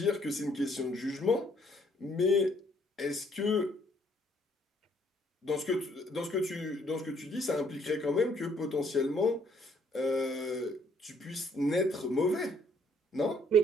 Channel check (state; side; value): normal; both; correlation 0.65